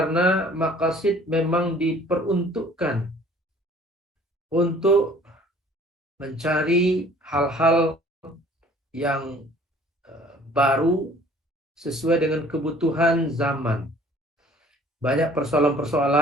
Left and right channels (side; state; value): both; normal; correlation 0.53